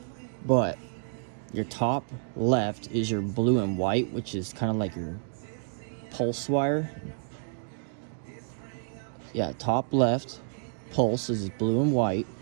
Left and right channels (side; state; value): left; silent; digital silence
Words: But your top left is your blue and white, which is kind of like your pulse wire. Yeah, top left pulse is blue and white,